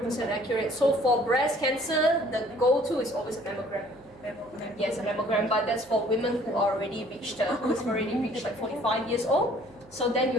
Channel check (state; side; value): noise; right; hum, 27 dB below the sound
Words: accurate. So for breast cancer, the go-to is always a mammogram. Yes, a mammogram, but that's for women who are already reached, who's already reached like 45 years old. So then